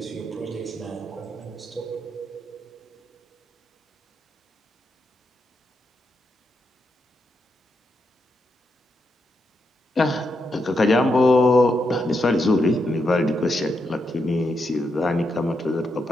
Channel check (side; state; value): both; normal; correlation 0.83